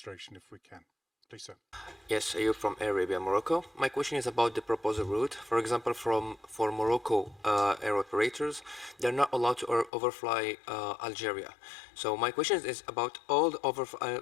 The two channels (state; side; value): drops out; right; at 9.9 s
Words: if we can. Please, sir. Yes, Ayub from Air Arabia, Morocco. My question is about the proposed route. For example, for Morocco air operators, they're not allowed to overfly Algeria. So my question is about all the